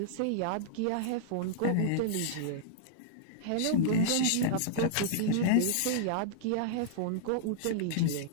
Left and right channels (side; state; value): both; different; correlation -0.02